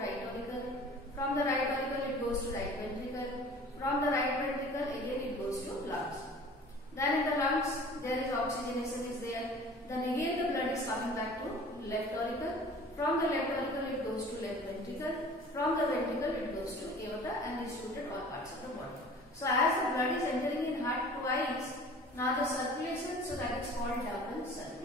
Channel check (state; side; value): normal; both; correlation 0.45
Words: auricle. From the right auricle it goes to right ventricle. From the right ventricle again it goes to lungs. Then in the lungs there is oxygenation is there. Then again the blood is coming back to left auricle. From the left auricle it goes to left ventricle. From the ventricle it goes to aorta and distributed all parts of the body. So as the blood is entering in heart twice, now the circulation, so that is called double